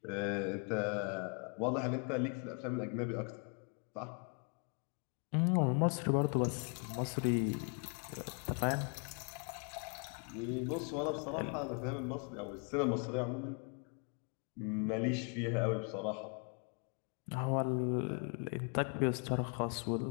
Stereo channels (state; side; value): quieter; right; 39.4 dB